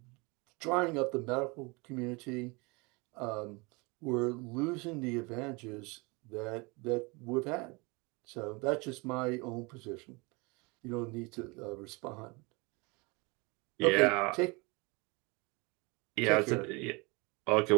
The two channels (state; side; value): quieter; left; 27.5 dB